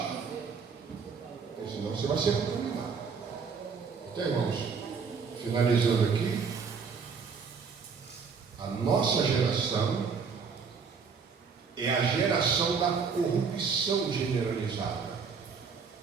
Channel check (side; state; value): left; quieter; 5.6 dB